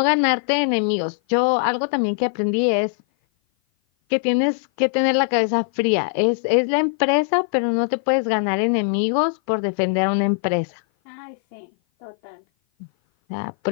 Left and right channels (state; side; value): silent; right; 56 dB below the other